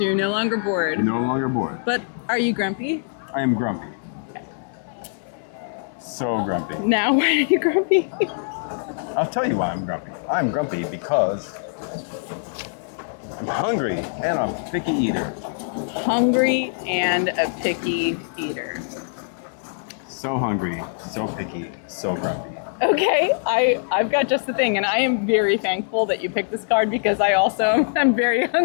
you're no longer bored. No longer bored. But are you grumpy? I am grumpy. So grumpy. Now why are you grumpy? I'll tell you why I'm grumpy. I'm grumpy because I'm hungry and I'm a picky eater. Hungry and a picky eater. So hungry, so picky, so grumpy. Okay, I've got just the thing, and I am very thankful that you picked this card because I also am very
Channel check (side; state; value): right; silent; digital silence